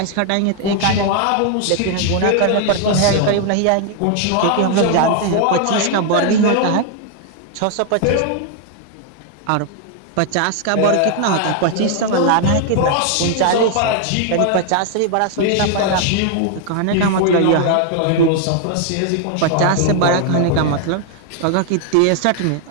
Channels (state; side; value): different; both; correlation 0.00